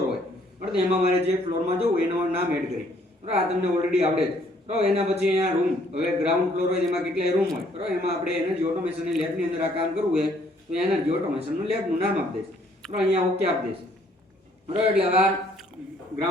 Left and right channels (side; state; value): both; normal; correlation 0.64